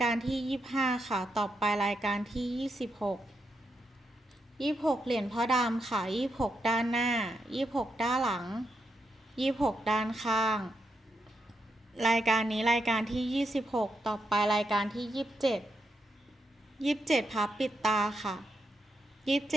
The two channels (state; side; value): normal; both; correlation 0.83